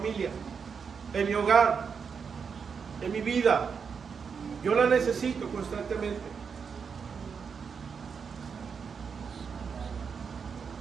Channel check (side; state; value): left; quieter; 6.1 dB